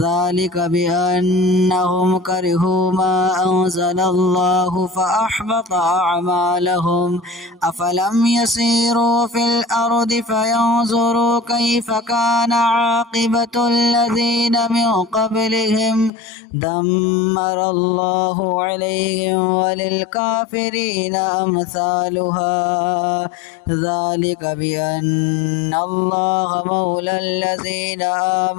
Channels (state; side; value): drops out; right; at 16.1 s